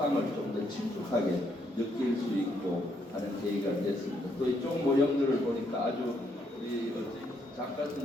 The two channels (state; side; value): normal; both; correlation 0.74